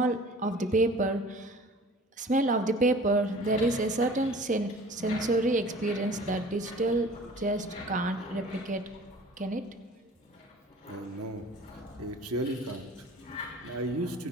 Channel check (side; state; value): both; normal; correlation 0.46